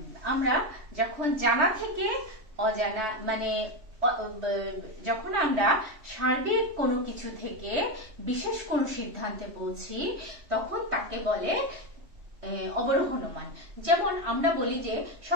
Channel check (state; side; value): late; left; 3.2 ms